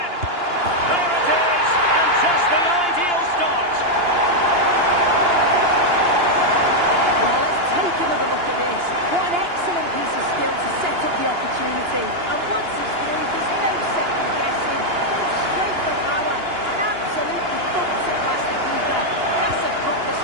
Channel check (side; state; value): left; late; 2.9 ms